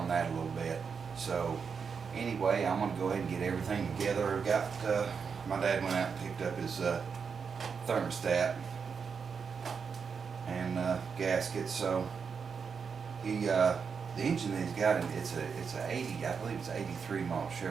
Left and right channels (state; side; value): quieter; left; 6.0 dB